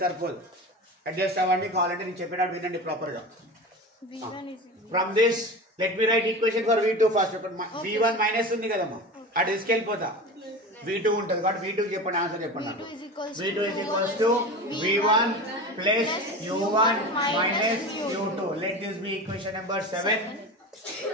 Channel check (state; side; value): normal; both; correlation 0.29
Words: సరిపోదు, అడ్జస్ట్ అవ్వండి. కావాలంటే నేను చెప్పేటట్టు వినండి ప్రాపర్ గా. From this let me right equation for v2 first. v1 minus ఉంది కదమ్మా, అటు తీసుకెళ్ళిపోతా. v2 ఉంటుంది కాబట్టి v2 చెప్పండి, ఆన్సర్ చెప్పండి. v2 is equals to v1 plus u1 minus u2. Let this be equation number 7.